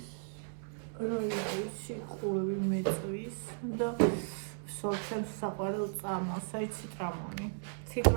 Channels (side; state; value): left; silent; 54 dB below the other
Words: სიყურები მეწვის და სოჩემს საყვარელ წამალს, აი